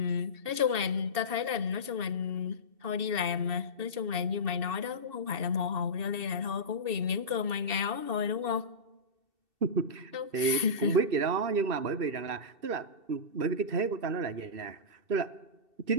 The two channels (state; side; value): late; left; 2.7 ms